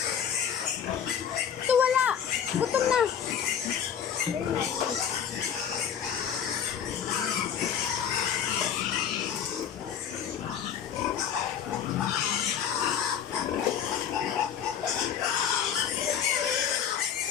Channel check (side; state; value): right; quieter; 8.5 dB